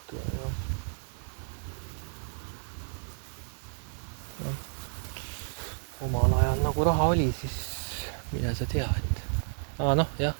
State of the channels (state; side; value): silent; left; digital silence